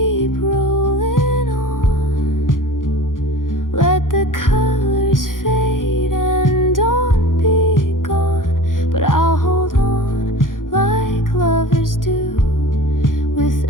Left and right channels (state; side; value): late; right; 0.89 ms